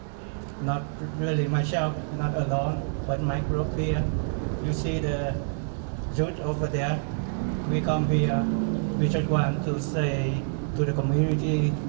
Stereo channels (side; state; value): left; silent; digital silence